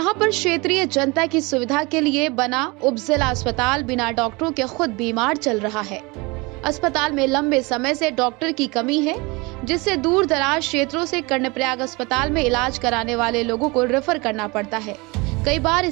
पर क्षेत्रीय जनता की सुविधा के लिए बना उपजिला अस्पताल बिना डॉक्टरों के खुद बीमार चल रहा है। अस्पताल में लंबे समय से डॉक्टर की कमी है, जिससे दूर दराज क्षेत्रों से कर्णप्रयाग अस्पताल में इलाज कराने वाले लोगों को रेफर करना पड़ता है। कई बार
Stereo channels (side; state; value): left; quieter; 25.7 dB